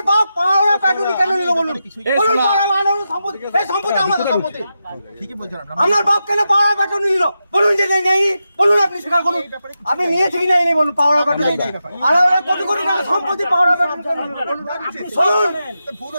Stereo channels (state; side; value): inverted; both; correlation -0.89